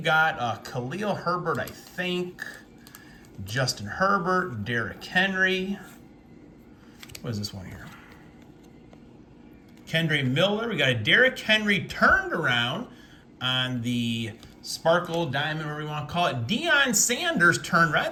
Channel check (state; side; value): identical; both; correlation 1.00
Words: got Khalil Herbert, I think. Justin Herbert, Derrick Henry. What is this one here? Kendre Miller. We got a Derrick Henry turned around on the Sparkle Diamond, whatever you want to call it. Deion Sanders turned around.